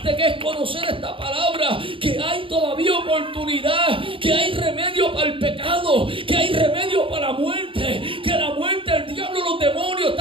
que es conocer esta palabra, que hay todavía oportunidad, que hay remedio para el pecado, que hay remedio para la muerte, que la muerte, el diablo, los demonios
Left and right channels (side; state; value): left; late; 0.25 ms